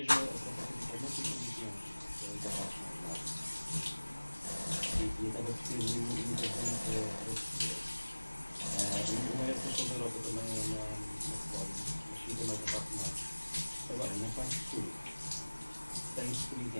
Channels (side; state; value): both; inverted; correlation -1.00